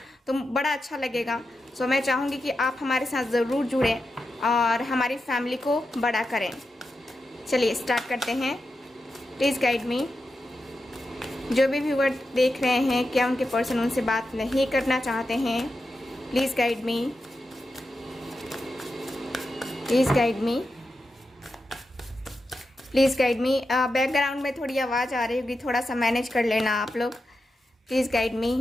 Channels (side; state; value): both; normal; correlation 0.89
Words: तो बड़ा अच्छा लगेगा। मैं चाहूँगी कि आप हमारे साथ ज़रूर जुड़ें और हमारी फैमिली को बड़ा करें। चलिए स्टार्ट करते हैं। Please guide me. जो भी व्यूअर देख रहे हैं, क्या उनके पर्सन उनसे बात नहीं करना चाहते हैं, please guide me, please guide me, please guide me. Background में थोड़ी आवाज़ आ रही होगी, थोड़ा सा मैनेज कर लेना आप लोग। Please guide